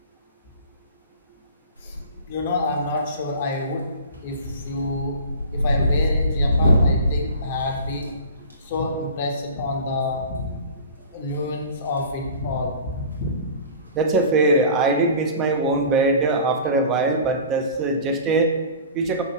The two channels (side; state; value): both; inverted; correlation -0.39